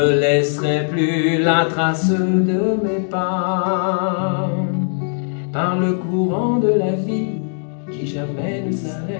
laisserai plus la trace de mes pas. Par le courant de la vie qui jamais ne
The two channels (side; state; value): right; silent; 66 dB below the other